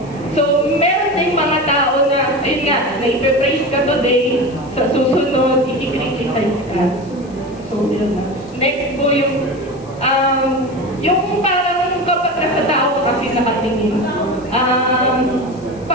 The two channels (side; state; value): left; noise; hiss, 27 dB below the sound